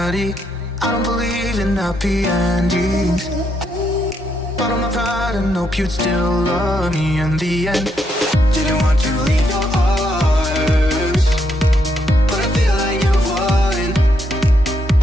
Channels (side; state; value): both; normal; correlation 0.77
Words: I don't believe in happy endings. Bottle my pride and hope you'd still love me in the end. Didn't want to leave your arms, but I feel like you won.